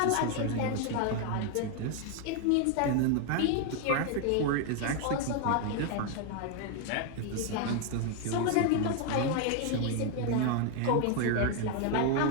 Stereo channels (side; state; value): both; different; correlation 0.01